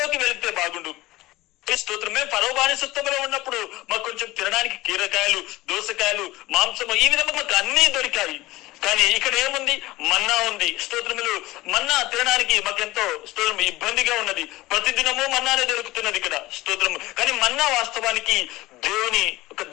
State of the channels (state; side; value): quieter; right; 18.6 dB